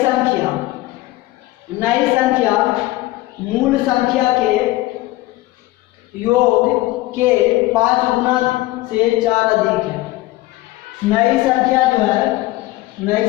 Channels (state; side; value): quieter; right; 18.2 dB